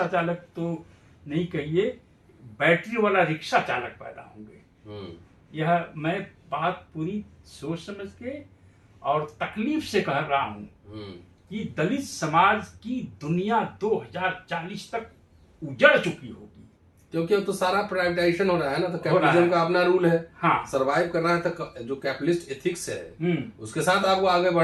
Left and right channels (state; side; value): identical; both; correlation 1.00